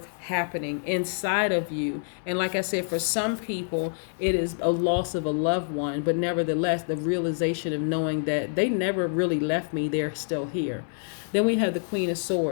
happening inside of you. And like I said, for some people, it is a loss of a loved one, but nevertheless, the realization of knowing that they never really left me, they're still here. Then we have the Queen of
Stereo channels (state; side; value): silent; right; digital silence